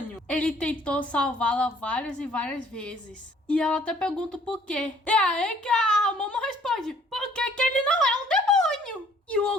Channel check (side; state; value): both; normal; correlation 0.59